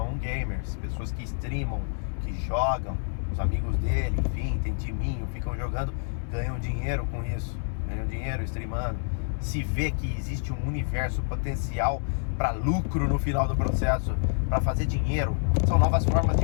gamers, pessoas que streamam, que jogam, os amigos dele, enfim, tem timinho, ficam jogando, ganham dinheiro com isso, ganham dinheiro streamando. Se vê que existe um universo potencial para lucro no final do processo, para fazer dinheiro. São novas formas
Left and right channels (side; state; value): right; silent; digital silence